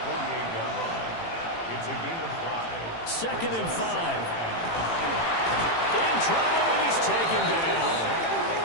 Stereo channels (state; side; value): late; right; 18 ms